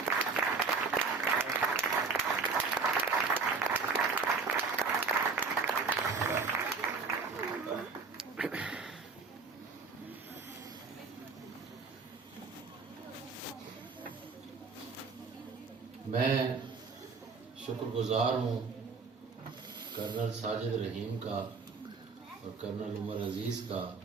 میں شکر گزار ہوں کرنل ساجد رحیم کا اور کرنل عمر عزیز کا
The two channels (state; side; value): quieter; left; 4.7 dB